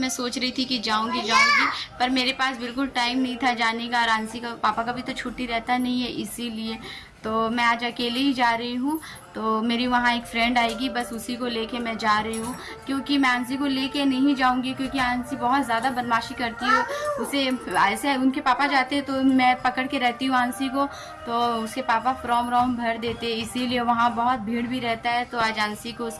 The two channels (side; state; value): both; identical; correlation 1.00